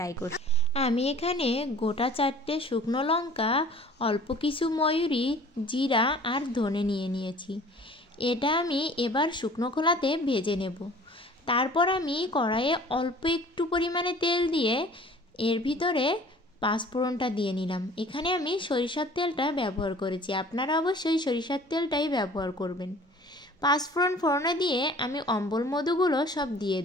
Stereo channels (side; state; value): both; normal; correlation 0.49